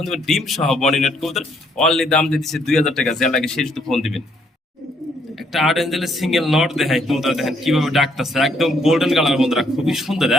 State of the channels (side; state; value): both; normal; correlation 0.69